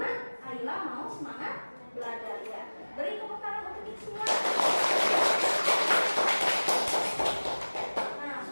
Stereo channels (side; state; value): both; inverted; correlation -1.00